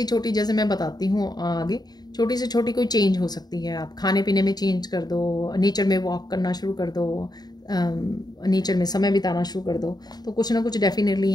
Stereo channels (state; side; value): late; right; 0.20 ms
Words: जैसे मैं बताती हूँ आगे, छोटी से छोटी कोई चेंज हो सकती है। आप खाने पीने में चेंज कर दो, नेचर में वॉक करना शुरू कर दो, नेचर में समय बिताना शुरू कर दो, तो कुछ ना कुछ डेफिनेटली